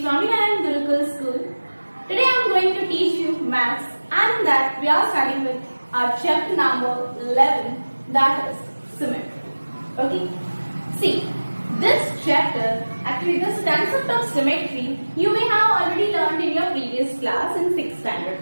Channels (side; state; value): both; inverted; correlation -1.00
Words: Swaminarayan Gurukul School. Today I am going to teach you maths, and in that we are starting with our chapter number 11, that is symmetry. Okay. See, this chapter, actually this concept of symmetry, you may have already learned in your previous class in 6th standard,